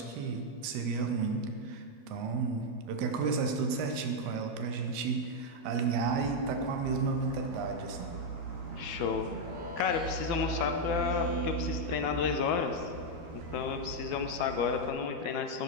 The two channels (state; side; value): late; left; 12 ms